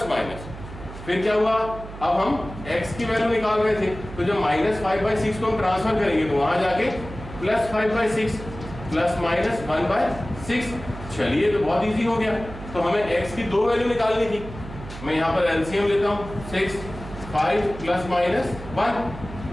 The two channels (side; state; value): right; noise; hum, 13 dB below the sound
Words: माइनस। फिर क्या हुआ, अब हम x की वैल्यू निकाल रहे थे, तो जब -5/6 को हम ट्रांसफर करेंगे तो वहां जाके +5/6 प्लस माइनस 1/6। चलिए, तो बहुत इजी हो गया। तो हमें x की दो वैल्यू निकालनी थी, मैं यहाँ पर एलसीएम लेता हूँ, 6 5 प्लस माइनस 1।